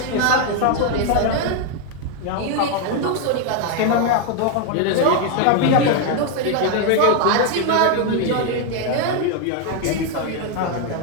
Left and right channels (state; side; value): different; both; correlation 0.01